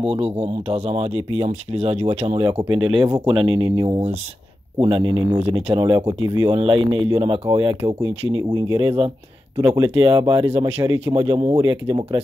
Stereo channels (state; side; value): normal; both; correlation 0.92